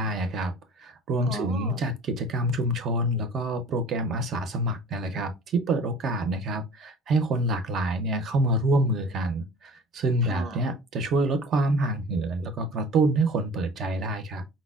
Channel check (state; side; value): normal; both; correlation 0.43